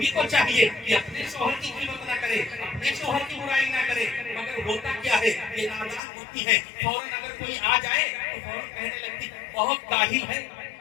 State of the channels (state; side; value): drops out; right; at 6.0 s